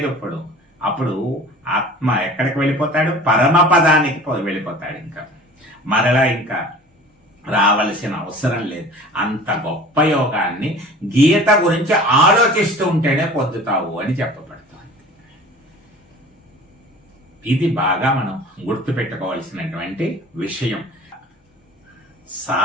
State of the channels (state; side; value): normal; both; correlation 0.42